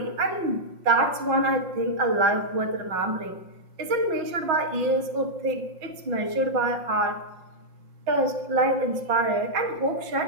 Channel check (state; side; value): late; left; 5.6 ms